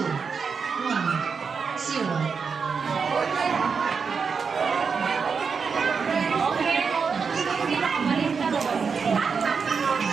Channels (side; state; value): left; quieter; 5.6 dB